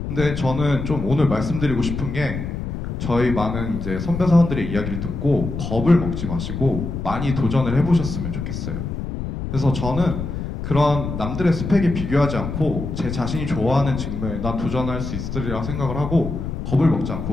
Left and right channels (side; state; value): left; noise; rumble, 5 dB below the sound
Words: 근데 저는 좀 오늘 말씀드리고 싶은 게 저희 많은 이제 선배 사원들의 이야기를 듣고 겁을 먹지 마시고 많이 도전을 해보셨으면 좋겠어요. 그래서 저는 그런 남들의 스펙에 비교하지 않고 제 자신이 좋아하는 직무에 난 도전할 수 있으리라 생각을 하고 겁을 먹지